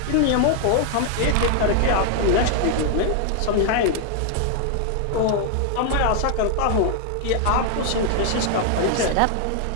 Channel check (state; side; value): different; both; correlation 0.00